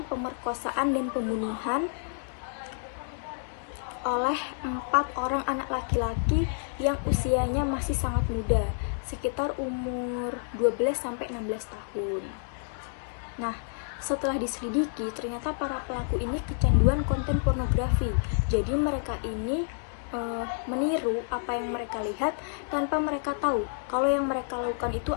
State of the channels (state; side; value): silent; right; digital silence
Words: pemerkosaan dan pembunuhan oleh 4 orang anak laki-laki yang usianya masih sangat muda, sekitar umur 12-16 tahun. Nah, setelah diselidiki, ternyata para pelaku ini kecanduan konten pornografi. Jadi mereka ini meniru apa yang mereka lihat tanpa mereka tahu kalau yang mereka lakukan itu